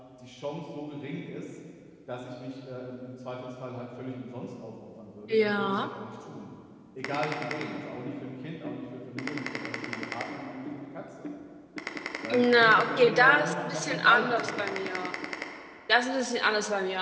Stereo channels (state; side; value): identical; both; correlation 1.00